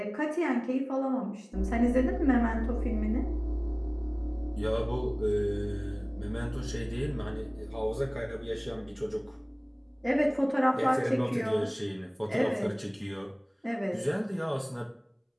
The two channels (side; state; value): both; identical; correlation 1.00